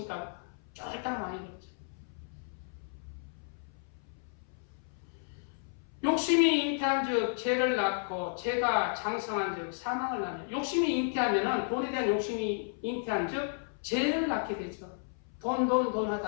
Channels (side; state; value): right; silent; 56 dB below the other